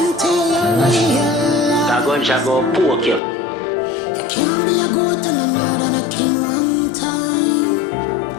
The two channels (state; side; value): drops out; right; at 3.2 s